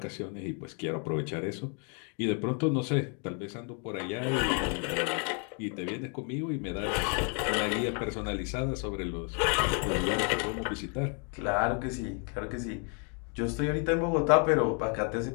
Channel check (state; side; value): quieter; right; 39.5 dB